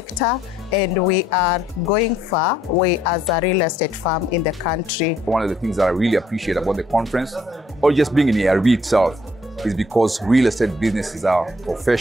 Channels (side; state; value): both; normal; correlation 0.66